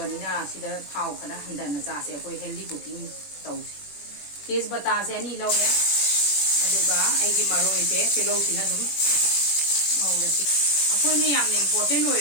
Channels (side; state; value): right; late; 21 ms